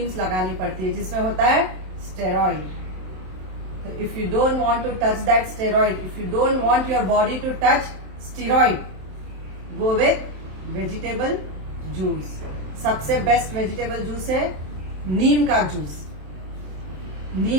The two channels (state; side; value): late; left; 27 ms